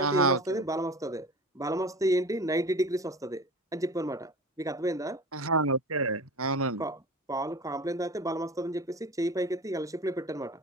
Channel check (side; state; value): both; normal; correlation 0.35